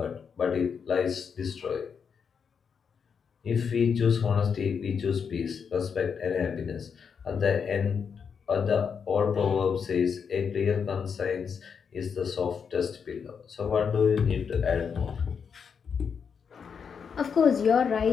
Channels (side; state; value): right; quieter; 6.5 dB